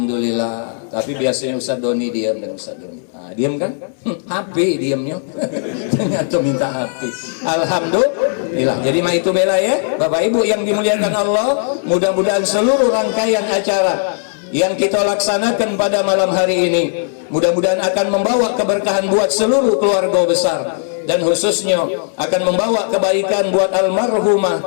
Tapi biasanya Ustaz Doni diam dan Ustaz Doni. Nah, diam kan? HP diamnya. Ternyata minta HP. Alhamdulillah. Jadi mah itu bela ya. Bapak Ibu yang dimuliakan Allah, mudah-mudahan seluruh rangkaian acara yang kita laksanakan pada malam hari ini mudah-mudahan akan membawa keberkahan buat seluruh keluarga besar, dan khususnya akan membawa kebaikan buat almarhumah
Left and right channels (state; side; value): silent; right; digital silence